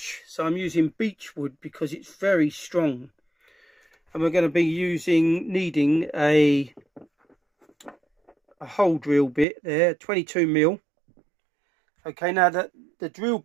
so I'm using beech wood because it's very strong. And we're going to be needing a hole drill bit there, 22mm. Okay, now the drill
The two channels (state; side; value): drops out; left; at 9.5 s